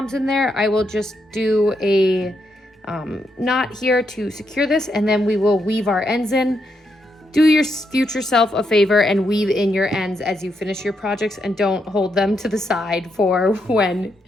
in there, I will just do a knot here to secure this, and then we will weave our ends in. Do your future self a favor and weave in your ends as you finish your projects, and don't hold them to the side for when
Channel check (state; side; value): normal; both; correlation 0.80